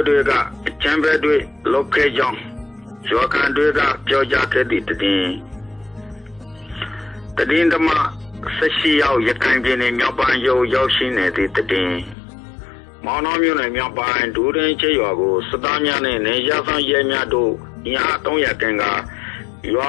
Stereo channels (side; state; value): right; drops out; at 12.2 s